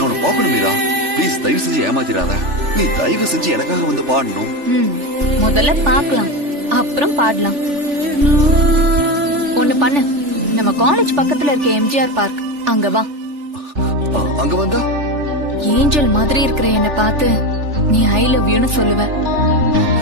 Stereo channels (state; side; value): late; left; 3.4 ms